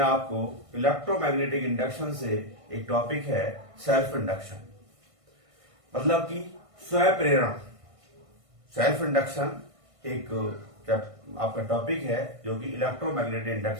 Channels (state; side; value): late; left; 1.6 ms